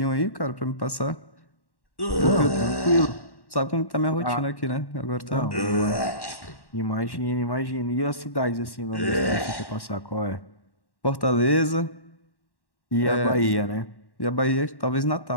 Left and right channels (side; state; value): right; late; 1.1 ms